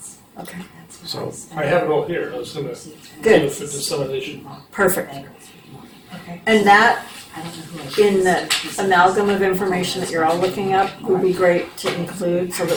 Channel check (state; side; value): identical; both; correlation 1.00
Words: Okay, So I have it all here, I was gonna. Good. For dissemination. perfect. And that, in the amalgam of information that you're all looking up, would be great to include so